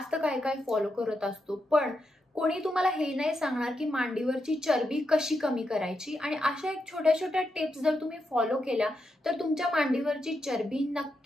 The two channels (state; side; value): normal; both; correlation 0.84